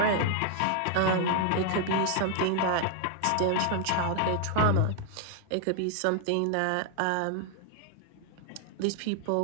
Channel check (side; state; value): both; different; correlation 0.00